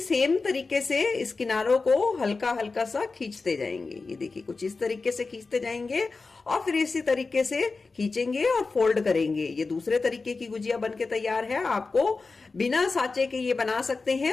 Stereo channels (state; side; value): quieter; right; 4.1 dB